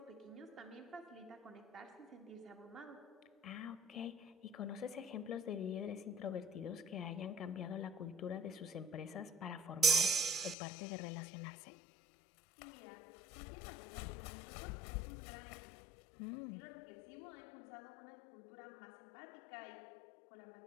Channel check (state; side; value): drops out; right; at 10.6 s